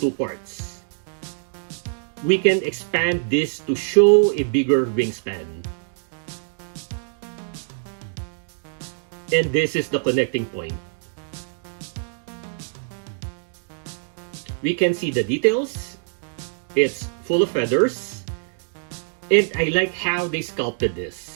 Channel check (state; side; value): silent; left; digital silence